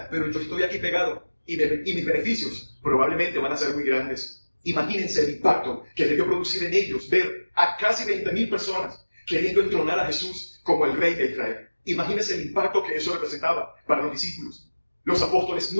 pero yo estoy aquí pegado y mis beneficios probablemente van a ser muy grandes. Imagínense el impacto que debió producir en ellos ver a casi 20,000 personas queriendo entronar a Jesús como el rey de Israel. Imagínense el impacto que eso representaba para los discípulos. Los apóstoles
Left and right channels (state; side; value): inverted; both; correlation -1.00